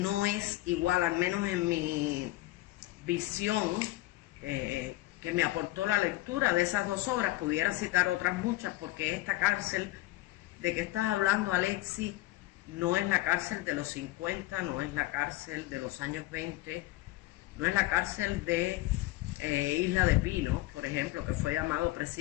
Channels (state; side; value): quieter; right; 18.1 dB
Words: es igual, al menos en mi visión, que me aportó la lectura de esas dos obras? Pudiera citar otras muchas, porque esta cárcel de que estás hablando, Alexis, no es la cárcel de los 50, no es la cárcel de los años 20, no es la cárcel de Isla de Pino, por ejemplo, que fue llamado